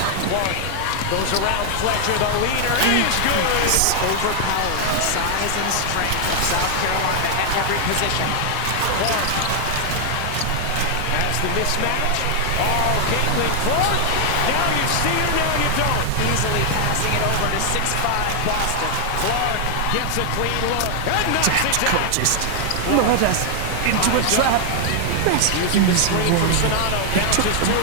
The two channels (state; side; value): different; both; correlation 0.00